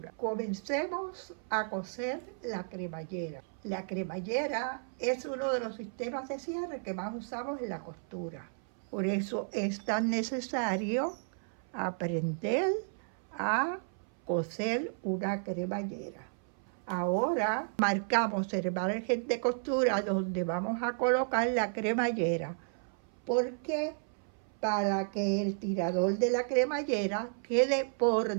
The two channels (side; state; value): left; silent; 56 dB below the other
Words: Comencemos a coser la cremallera. La cremallera es uno de los sistemas de cierre que más usamos en la costura. Por eso es tan necesario aprender a coser una cremallera. Ahora marcamos el margen de costura donde vamos a colocar la cremallera, porque para que el tirador de la cremallera quede por